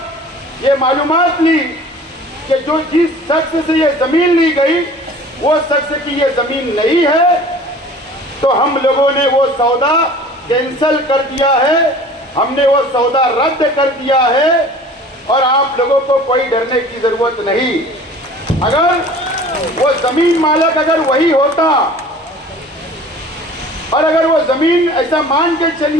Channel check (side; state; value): both; normal; correlation 0.45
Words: ये मालूमात ली कि जो जिस शख्स से ये जमीन ली गई वो शख्स की ये जमीन नहीं है, तो हम लोगों ने वो सौदा कैंसिल कर दिया है, हमने वो सौदा रद्द कर दिया है और आप लोगों को कोई डरने की जरूरत नहीं। अगर वो जमीन मालिक अगर वही होता और अगर वो जमीन ऐसा मान के